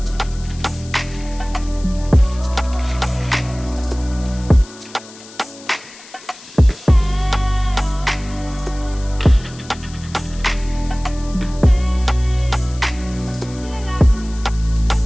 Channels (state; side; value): noise; left; hiss, 19 dB below the sound